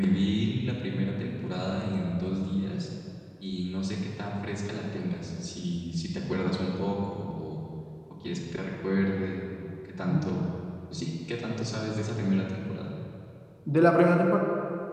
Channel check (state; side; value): identical; both; correlation 1.00